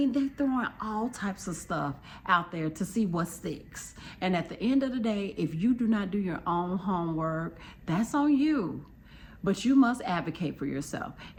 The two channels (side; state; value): both; identical; correlation 1.00